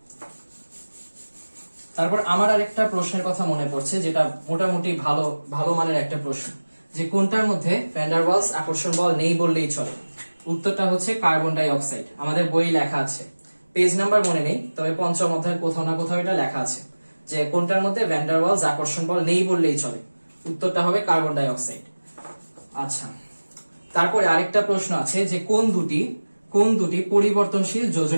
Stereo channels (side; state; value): both; inverted; correlation -1.00